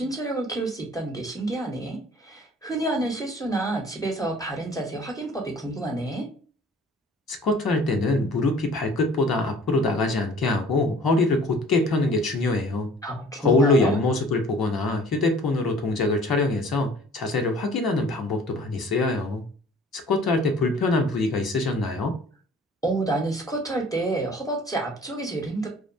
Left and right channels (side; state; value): both; normal; correlation 0.51